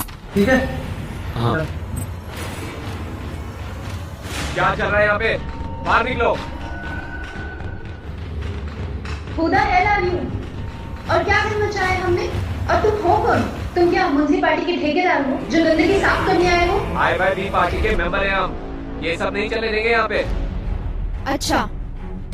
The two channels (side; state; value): both; identical; correlation 1.00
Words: ठीक है? हाँ। क्या चल रहा है यहाँ पे? बाहर निकलो। खुदा है यू और क्या करना चाहे हमने? और तुम हो कौन? तुम क्या म्युनिसिपैलिटी के ठेकेदार हो जो गंदगी साफ करने आए हो? IYB पार्टी के मेंबर हैं हम, ये सब नहीं चले देंगे यहाँ पे। अच्छा,